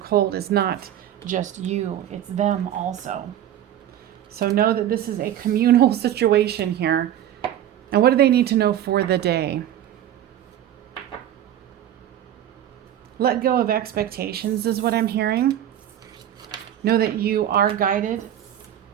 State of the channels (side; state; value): left; quieter; 11.3 dB